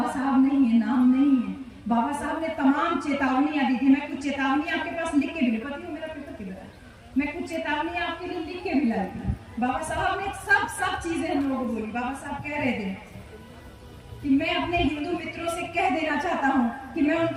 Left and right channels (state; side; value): identical; both; correlation 1.00